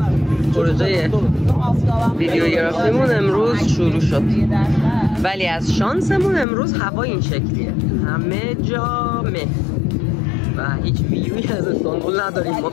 پروژه ویدیوگرافیمون امروز شروع شد. ولی از شانسمون امروز هوا این شکلیه، همه جا مه و هیچ ویوی از استانبول نداریم ما.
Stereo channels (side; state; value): right; drops out; at 6.5 s